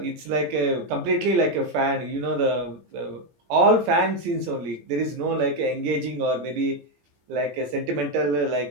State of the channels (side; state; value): left; late; 17 ms